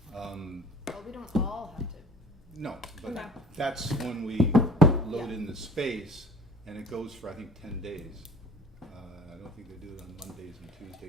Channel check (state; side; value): normal; both; correlation 0.50